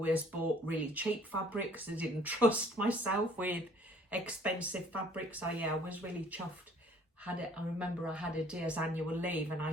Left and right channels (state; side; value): normal; both; correlation 0.57